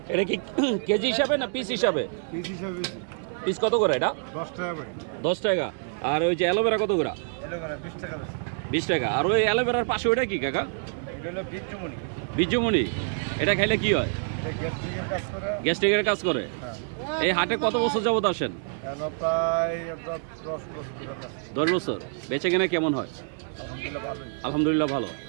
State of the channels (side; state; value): left; silent; 60 dB below the other